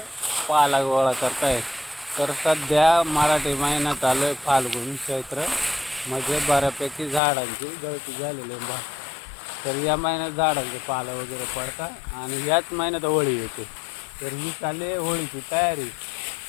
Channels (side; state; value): right; drops out; at 7.2 s